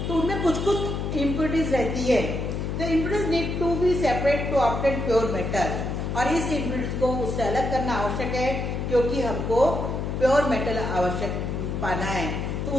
तो उनमें कुछ कुछ इम्प्योरिटीज रहती है. The impurities need to be separate to obtain pure metal. और इस इम्प्योरिटीज को उससे अलग करना आवश्यक है, क्योंकि हमको प्योर मेटल आवश्यक पाना है. तो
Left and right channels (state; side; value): noise; left; hum, 2 dB below the sound